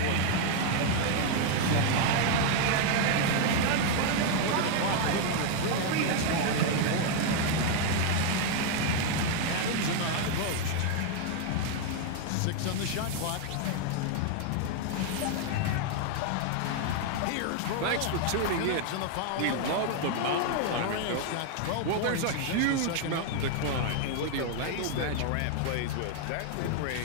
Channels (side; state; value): both; different; correlation 0.00